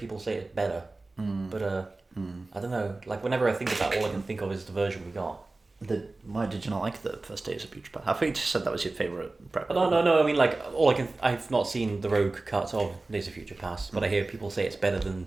say it's better. But I don't know. Like whenever I think of that, all I can think of is the version we got. Why did you not like the first Days of Future Past? I thought you just said that was your favourite. No. I mean, like I've not seen the Rogue cut of Days of Future Past, but I hear people say it's better than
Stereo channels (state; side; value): quieter; left; 3.2 dB